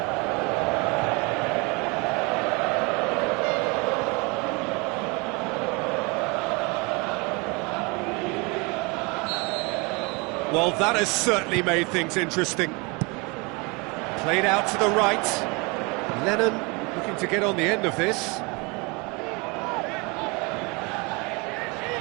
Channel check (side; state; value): left; quieter; 28.5 dB